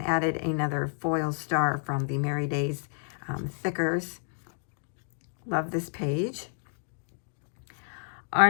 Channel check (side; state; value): right; silent; digital silence